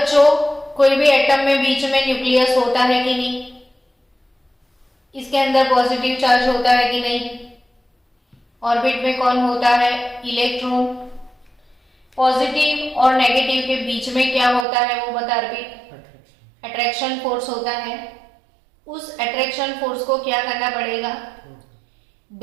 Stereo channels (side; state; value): left; drops out; at 14.7 s